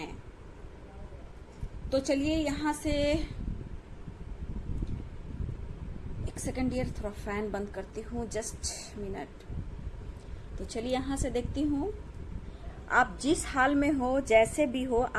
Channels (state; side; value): identical; both; correlation 1.00